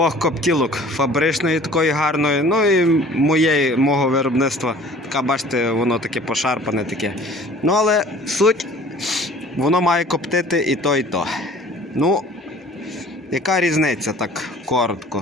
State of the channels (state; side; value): normal; both; correlation 0.48